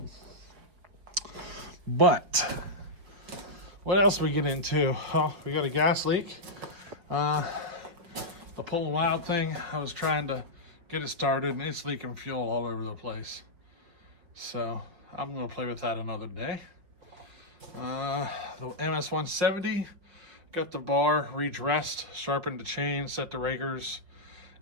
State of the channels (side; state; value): left; late; 5.2 ms